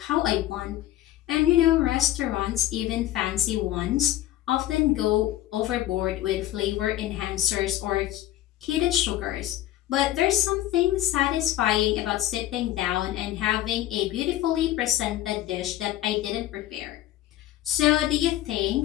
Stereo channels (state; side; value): quieter; right; 14.0 dB